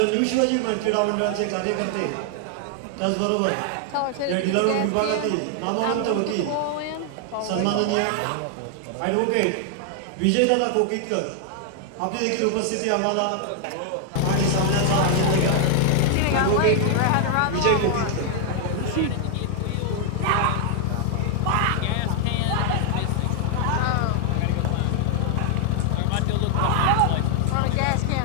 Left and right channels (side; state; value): both; different; correlation 0.00